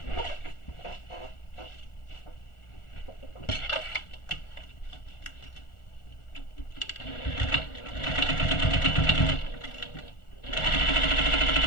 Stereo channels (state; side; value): late; right; 1.4 ms